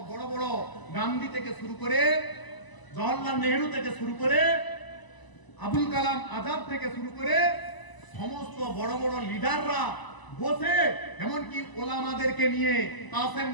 বড় বড় গান্ধী থেকে শুরু করে, জওহরলাল নেহেরু থেকে শুরু করে, আবুল কালাম আজাদ থেকে শুরু করে সমস্ত বড় বড় লিডাররা বসে, এমনকি ওলামাদেরকে নিয়ে, কাসেম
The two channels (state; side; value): late; right; 1.0 ms